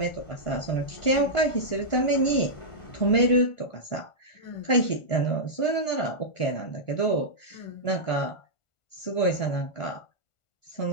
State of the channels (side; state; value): right; late; 1.5 ms